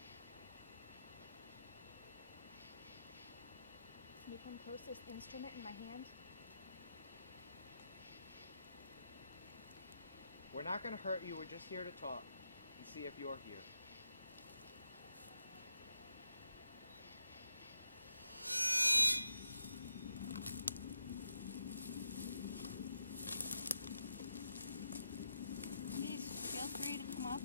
Can you come close to this instrument in my hand? We're not going to hurt you. We're just here to talk and see if you're here. Please feel free to come up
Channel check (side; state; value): both; inverted; correlation -0.84